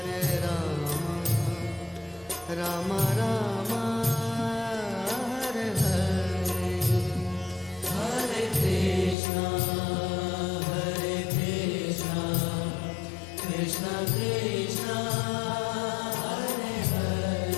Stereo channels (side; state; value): right; drops out; at 9.2 s